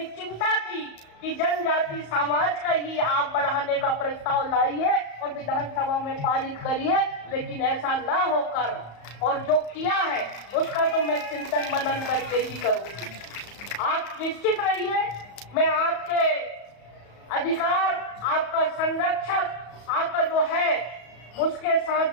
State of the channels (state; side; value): late; right; 34 ms